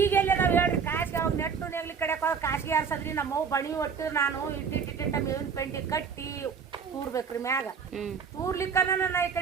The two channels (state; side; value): quieter; left; 6.3 dB